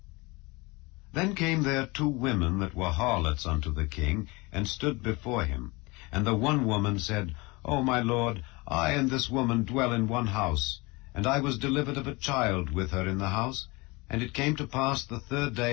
Then came there 2 women that were harlots unto the king, and stood before him. And the one woman said, O my lord, I and this woman dwell in one house, and I was delivered of a child with her in the house. And it came to pass the 3rd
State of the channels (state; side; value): quieter; right; 25.2 dB